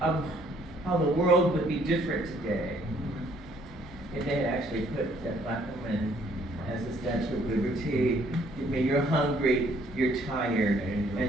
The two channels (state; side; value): normal; both; correlation 0.64